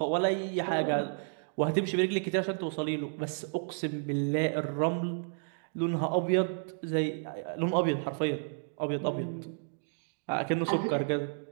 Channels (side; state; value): left; silent; digital silence